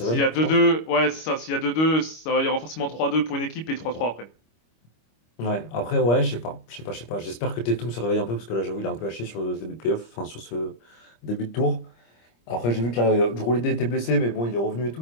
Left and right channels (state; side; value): late; right; 25 ms